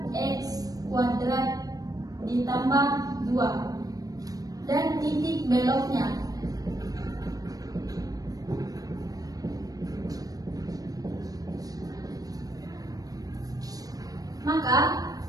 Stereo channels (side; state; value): left; late; 0.18 ms